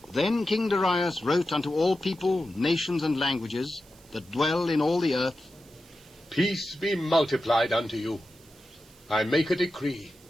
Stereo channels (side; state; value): right; noise; hiss, 27 dB below the sound